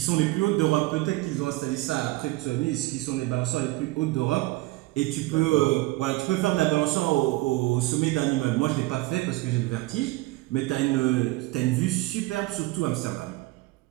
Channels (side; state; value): left; quieter; 20.3 dB